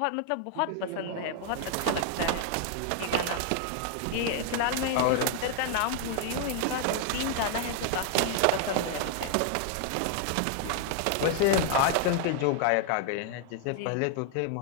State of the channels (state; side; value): different; both; correlation 0.00